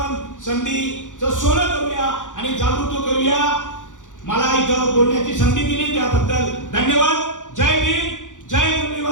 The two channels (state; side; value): late; right; 0.87 ms